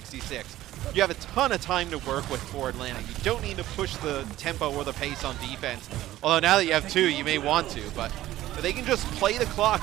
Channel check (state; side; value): quieter; left; 14.8 dB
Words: you have a ton of time to work with for Atlanta. You don't need to push the tempo or the pace on defense. Although now that you have 2, you may want to. But they can just play the